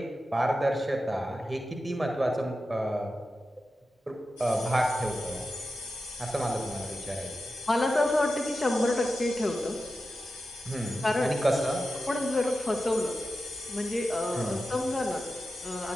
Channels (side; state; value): both; normal; correlation 0.91